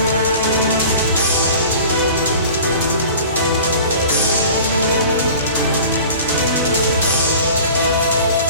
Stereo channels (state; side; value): inverted; both; correlation -0.42